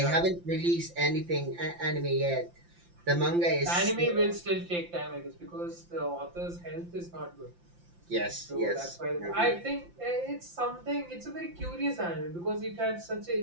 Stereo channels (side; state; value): left; late; 5.8 ms